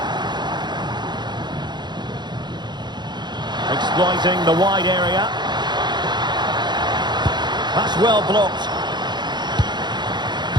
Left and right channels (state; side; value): late; left; 0.21 ms